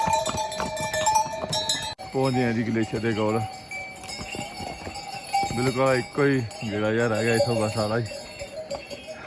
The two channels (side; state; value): both; identical; correlation 1.00